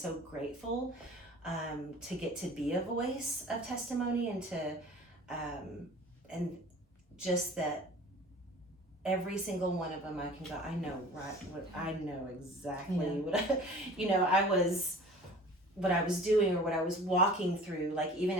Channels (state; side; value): normal; both; correlation 0.44